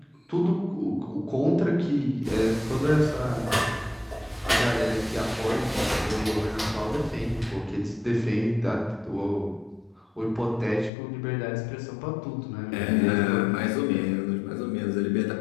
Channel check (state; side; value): drops out; right; at 10.9 s